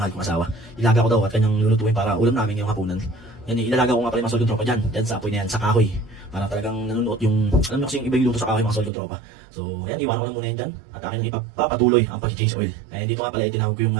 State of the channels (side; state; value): left; drops out; at 8.9 s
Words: kong asawa. Ilaga ko daw at kanyang lulutuin para ulam namin ngayong hapunan. Yan, ilalaga ko nga pala yung mga solid kong tropa dyan sa apoy na yan, sa kahoy. Para talagang nanunuot yung, alam mo kasi yung iba yung luto sa kahoy mga solid kong tropa. So yan, iwanan ko na muna yan dyan. At akin nang ipapatuloy ang pag-change oil. Dito nga pala tinawag ko yung